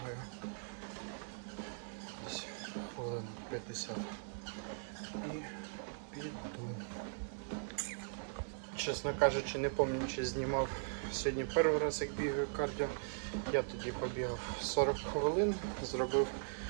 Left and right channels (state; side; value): silent; left; digital silence